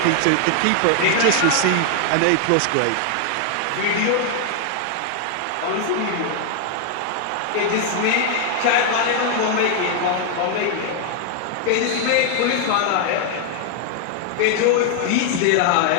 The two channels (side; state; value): both; different; correlation 0.00